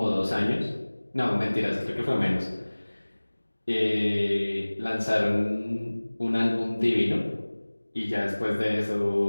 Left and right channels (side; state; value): both; inverted; correlation -1.00